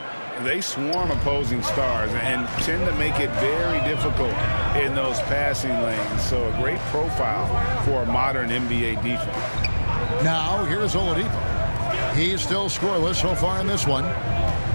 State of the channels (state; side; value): inverted; both; correlation -1.00